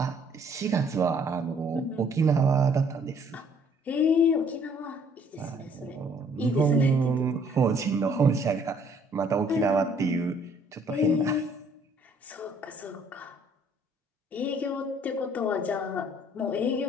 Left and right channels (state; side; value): normal; both; correlation 0.61